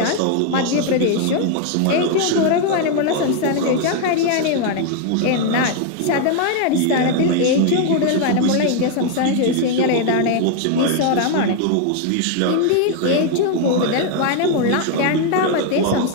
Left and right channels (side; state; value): both; different; correlation 0.01